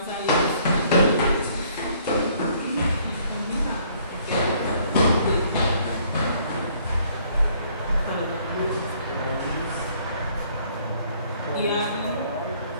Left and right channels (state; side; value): inverted; both; correlation -0.62